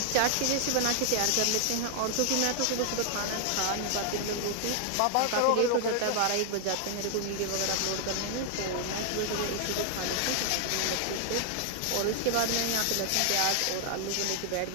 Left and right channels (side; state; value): both; different; correlation 0.00